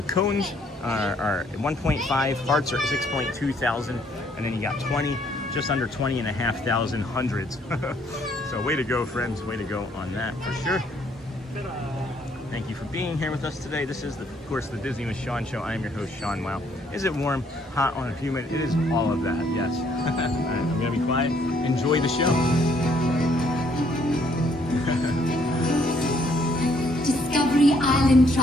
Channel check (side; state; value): both; normal; correlation 0.67